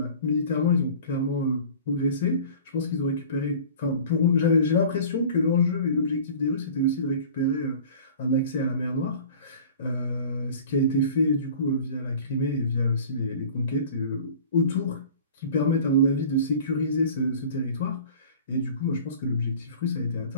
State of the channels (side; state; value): both; inverted; correlation -0.43